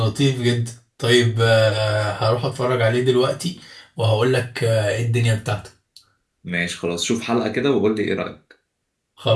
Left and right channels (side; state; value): both; identical; correlation 1.00